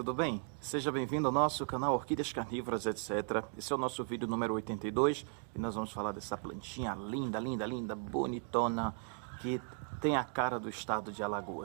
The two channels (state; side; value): quieter; left; 34.8 dB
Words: bem? Seja bem-vindo ao nosso canal Orquídeas Carnívoras, etc. Esse é o nosso vídeo número 82 e nós vamos falar dessa plantinha linda, linda, linda, bonitona, que tem a cara do estado de